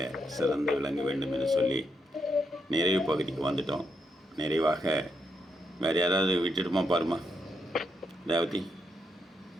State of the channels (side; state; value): both; normal; correlation 0.80